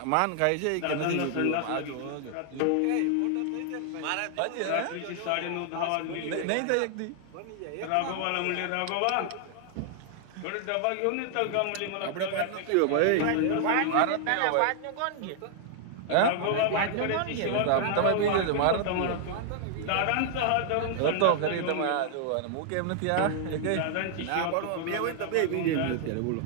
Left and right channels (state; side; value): different; both; correlation 0.00